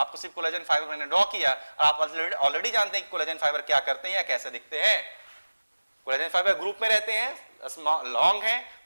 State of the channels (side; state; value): both; inverted; correlation -1.00